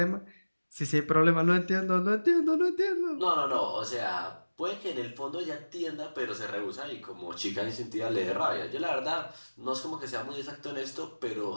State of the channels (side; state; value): both; inverted; correlation -1.00